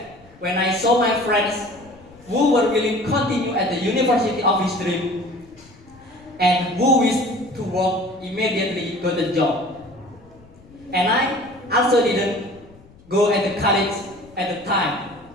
when I saw my friends who were willing to continue at the university of his dream and who wished to work immediately got a job. And I also didn't go at the college at the time,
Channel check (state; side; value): noise; left; rumble, 25 dB below the sound